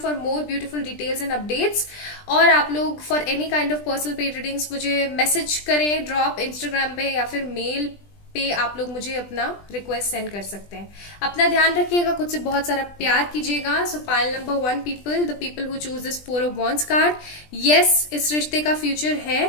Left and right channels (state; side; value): late; right; 20 ms